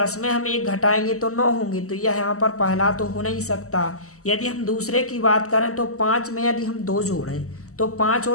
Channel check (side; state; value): right; late; 0.64 ms